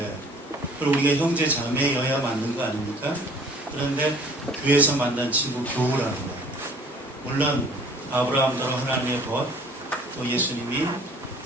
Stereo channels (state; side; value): normal; both; correlation 0.52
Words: 그리고 우리가 형제 자매여야 맞는 거 아닙니까? 그런데 교회에서 만난 친구 교우라는 거예요. 물론 아브라함대로 하나님의 벗, 또 예수님이